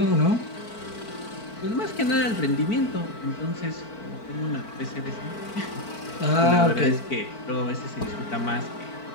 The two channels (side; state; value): right; late; 4.5 ms